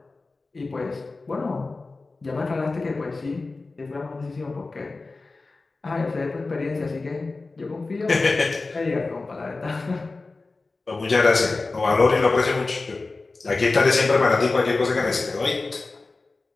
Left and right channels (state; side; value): quieter; right; 3.6 dB